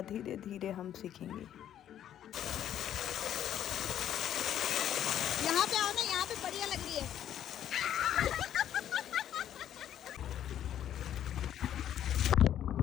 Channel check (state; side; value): quieter; right; 10.7 dB